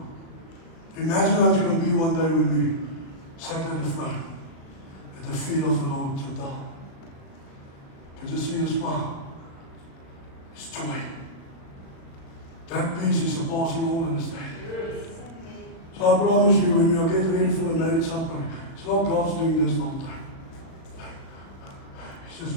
Imagine how it's going to be one day when we sat at the throne, at the feet of the Lord to die. Can you see a smile? It's joy. That peace is surpassing all understanding. So I promise you, when we are getting ready for the marriage supper, it's not God's doing this all the time. He's just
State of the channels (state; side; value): late; right; 36 ms